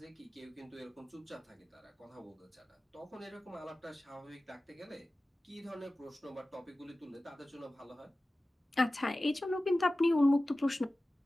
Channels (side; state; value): both; normal; correlation 0.96